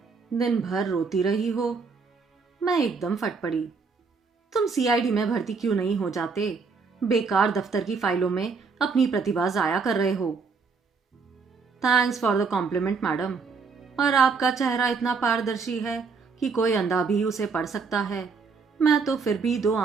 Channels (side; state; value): left; quieter; 5.0 dB